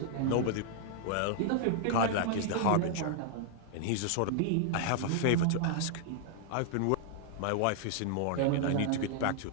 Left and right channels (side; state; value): both; different; correlation -0.01